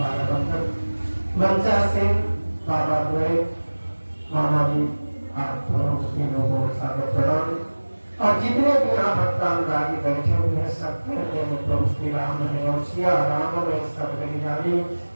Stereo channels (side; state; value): both; inverted; correlation -1.00